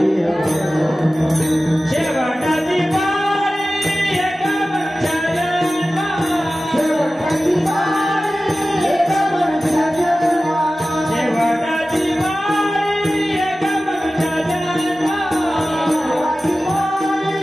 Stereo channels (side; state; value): both; normal; correlation 0.95